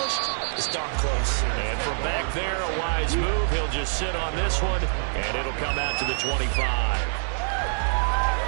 it's darn close. And from back there, a wise move. He'll just sit on this one, and it'll come out to the 25.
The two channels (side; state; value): left; silent; digital silence